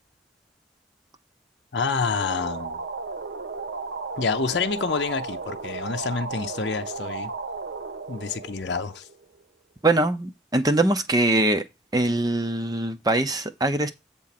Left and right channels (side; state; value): both; normal; correlation 0.33